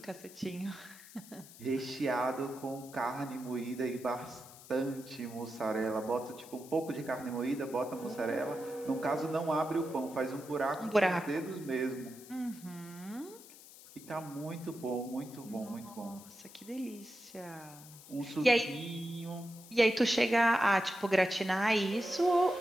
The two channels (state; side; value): noise; left; hiss, 19 dB below the sound